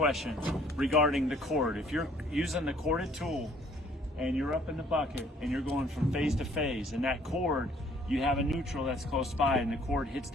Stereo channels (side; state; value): both; normal; correlation 0.59